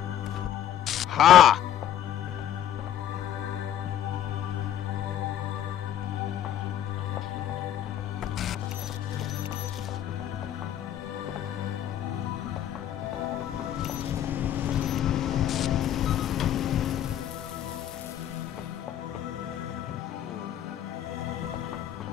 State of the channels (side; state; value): right; quieter; 10.8 dB